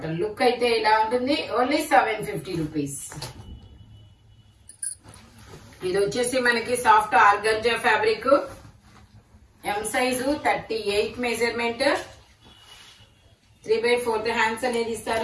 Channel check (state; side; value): identical; both; correlation 1.00